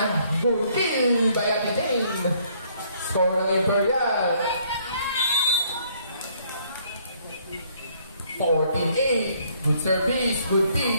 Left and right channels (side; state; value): both; inverted; correlation -0.64